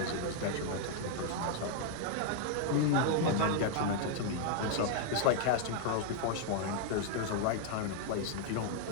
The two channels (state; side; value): different; both; correlation 0.00